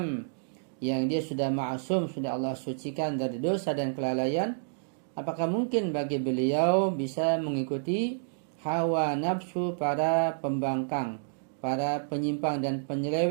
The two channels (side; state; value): left; silent; digital silence